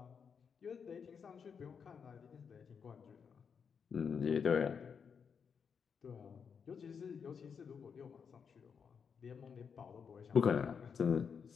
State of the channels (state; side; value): quieter; right; 6.5 dB